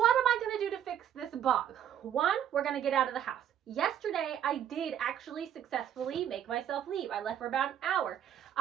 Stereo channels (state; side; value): quieter; left; 10.0 dB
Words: am I going to do to fix this bog? One, we're going to get out of the house. Yesterday, I did actually successfully make myself leave. I left for about an hour.